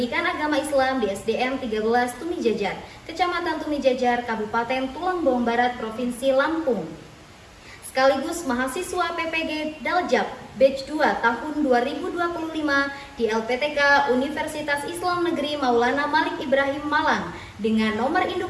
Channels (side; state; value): both; identical; correlation 1.00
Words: agama Islam di SDN 13 Tumijajar, Kecamatan Tumijajar, Kabupaten Tulangbong Barat, Provinsi Lampung, sekaligus mahasiswa PPG Daljab Batch 2 tahun 2025 di LPTK Universitas Islam Negeri Maulana Malik Ibrahim Malang dengan nomor